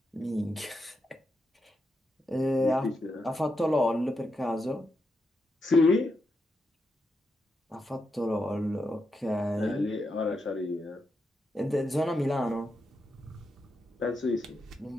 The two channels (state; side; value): normal; both; correlation 0.84